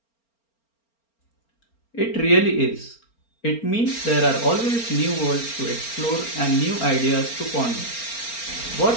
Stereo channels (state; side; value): late; right; 4.4 ms